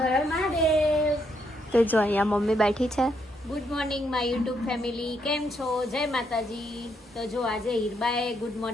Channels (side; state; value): both; normal; correlation 0.75